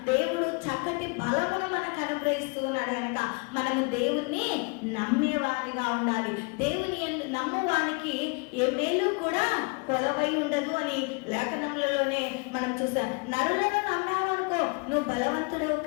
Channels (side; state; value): right; quieter; 31.1 dB